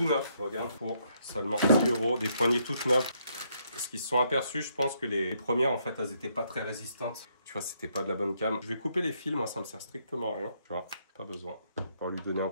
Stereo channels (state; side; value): inverted; both; correlation -0.73